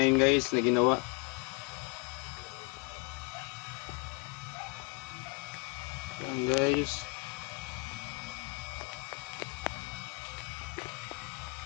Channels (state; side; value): quieter; right; 34.6 dB